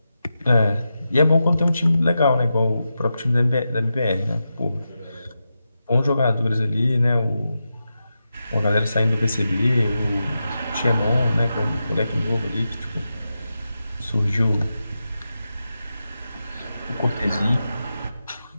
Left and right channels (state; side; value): inverted; both; correlation -0.89